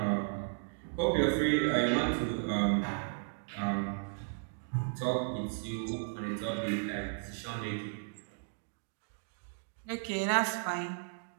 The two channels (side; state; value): left; silent; digital silence